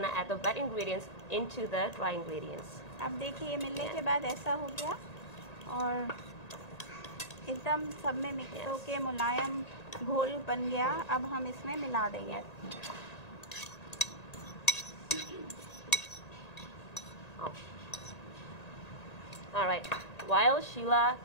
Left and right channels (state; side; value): late; right; 1.9 ms